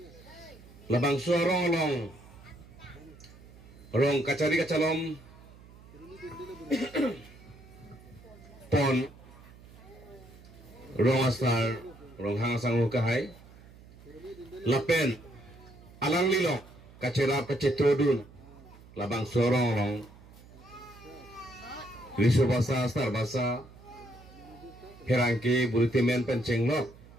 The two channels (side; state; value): right; noise; hum, 21 dB below the sound